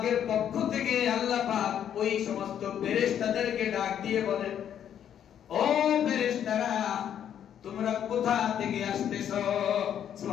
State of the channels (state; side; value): quieter; right; 9.5 dB